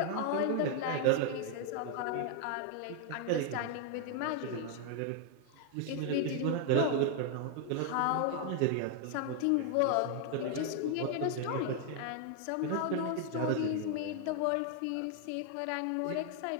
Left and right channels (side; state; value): both; different; correlation 0.00